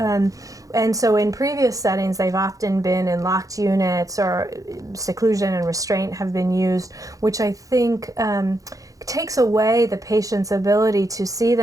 And so in previous settings, they've often been in locked units, or seclusion and restraint have been used, which I think takes away the patient's ability to see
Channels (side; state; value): left; late; 0.17 ms